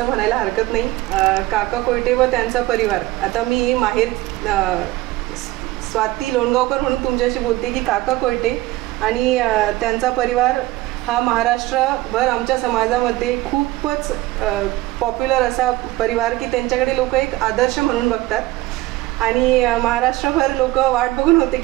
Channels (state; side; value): quieter; left; 18.0 dB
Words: म्हणायला हरकत नाही. काका कोयटे व त्यांचा परिवार, आता मी माहेर स्वाती लोणगावकर म्हणून तुमच्याशी बोलते की काका कोयटे आणि त्यांचा परिवार हा महाराष्ट्रभर आमच्या समाजामध्ये खूपच पॉप्युलर असा परिवार की त्यांच्याकडे लोक एक आदर्श म्हणून बघतात आणि महाराष्ट्रभर लोक वाट बघून होते